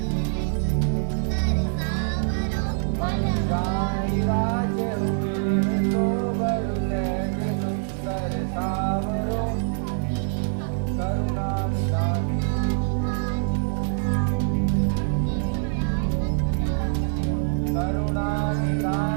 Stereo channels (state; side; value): silent; left; digital silence